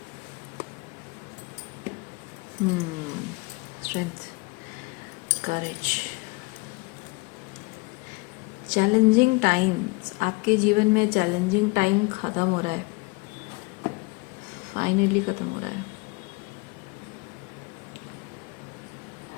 स्ट्रेंथ, करेज, चैलेंजिंग टाइम्स। आपके जीवन में चैलेंजिंग टाइम ख़त्म हो रहा है, फाइनली ख़त्म हो रहा है।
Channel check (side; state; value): right; quieter; 27.0 dB